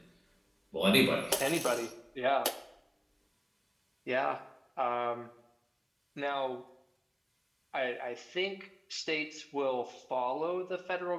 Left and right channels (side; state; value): both; identical; correlation 1.00